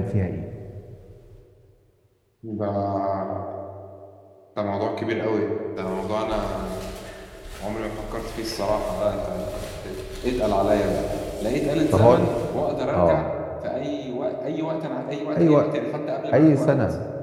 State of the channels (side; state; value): both; identical; correlation 1.00